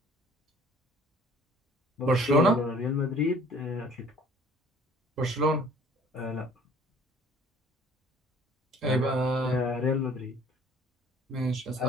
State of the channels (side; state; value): both; normal; correlation 0.53